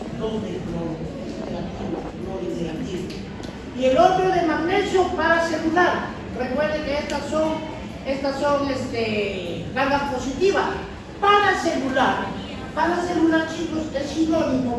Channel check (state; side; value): identical; both; correlation 1.00